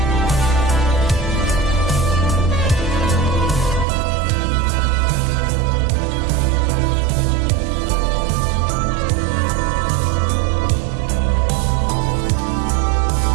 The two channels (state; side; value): drops out; left; at 3.9 s